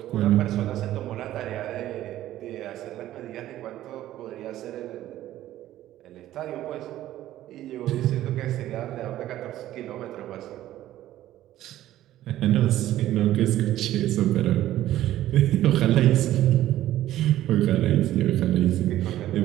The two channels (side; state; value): left; quieter; 13.7 dB